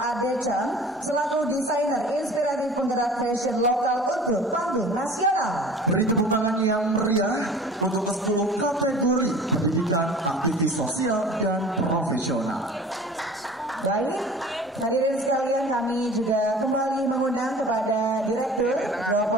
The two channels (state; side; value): normal; both; correlation 0.44